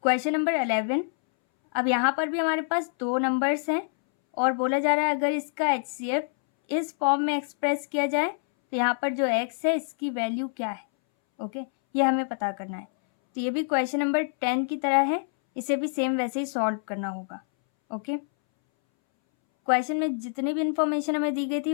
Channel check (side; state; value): right; silent; 61 dB below the other